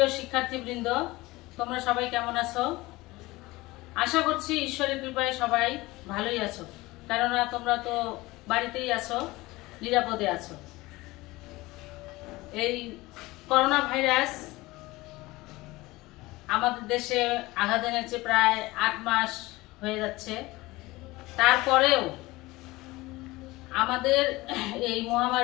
শিক্ষার্থীবৃন্দ, তোমরা সবাই কেমন আছো? আশা করছি ঈশ্বরের কৃপায় সবাই ভালোই আছো, কেননা তোমরা তো বাড়িতেই আছো, নিরাপদে আছো। এই করোনা ভাইরাস আমাদের দেশে আঘাত এনেছে, প্রায় 8 মাস হয়ে যাচ্ছে। তারপরেও আমাদের এই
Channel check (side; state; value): right; quieter; 20.4 dB